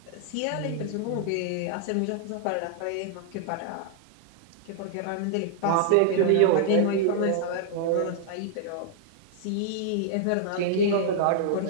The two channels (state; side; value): different; both; correlation -0.01